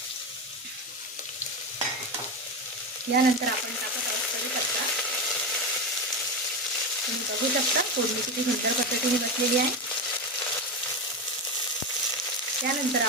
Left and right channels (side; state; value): both; normal; correlation 0.16